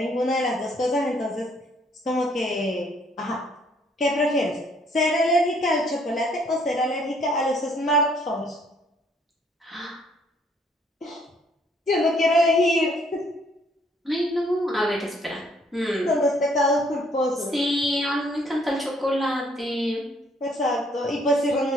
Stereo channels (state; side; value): normal; both; correlation 0.65